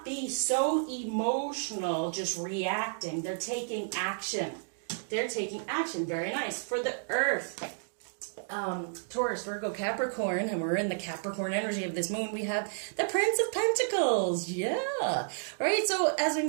be so emotional, just reacting. They're taking action. Very nice. For the earth, Taurus, Virgo, Capricorn, and we're in the Capricorn energy of this moon, we have the Prince of Pentacles. Yeah. Right? So as we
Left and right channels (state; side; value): silent; left; digital silence